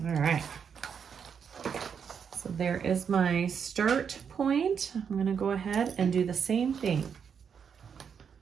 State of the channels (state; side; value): quieter; left; 7.0 dB